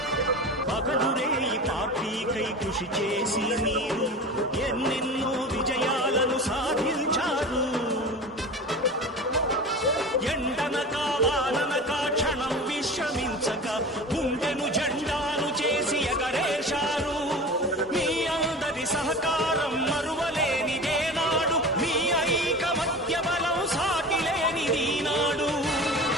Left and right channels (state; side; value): normal; both; correlation 0.34